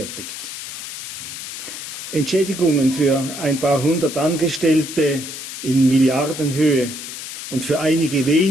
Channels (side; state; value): left; noise; hiss, 9 dB below the sound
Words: Entschädigungen für ein paar hundert Angestellte in Milliardenhöhe und für einige